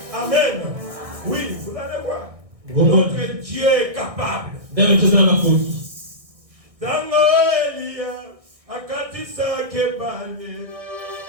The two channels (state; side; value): late; left; 1.6 ms